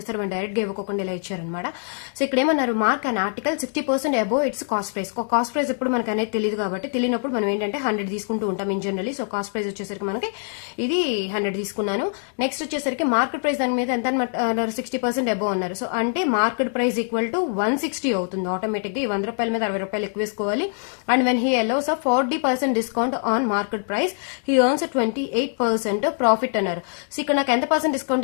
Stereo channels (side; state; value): right; silent; 58 dB below the other